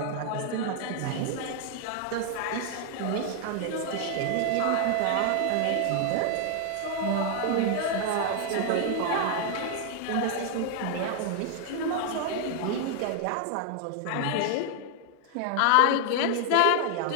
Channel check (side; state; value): both; different; correlation 0.00